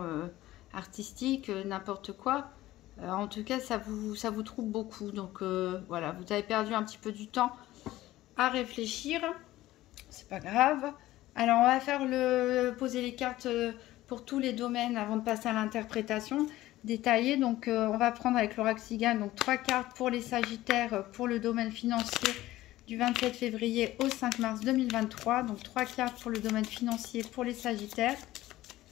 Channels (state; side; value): quieter; right; 16.0 dB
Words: artistique, n'importe quoi. En tout cas, ça vous trouble beaucoup. Donc voilà, vous avez perdu un petit peu du temps à réfléchir. C'est pas grave. Alors, on va faire poser les cartes pour tous les domaines avant de passer à l'interprétation détaillée. Donc, on va prendre avec l'oracle Cigane, donc 3 cartes pour les Sagittaires pour le domaine financier du 27 février au 5 mars 2023. Donc, 3 cartes pour le domaine financier pour les Sagittaires.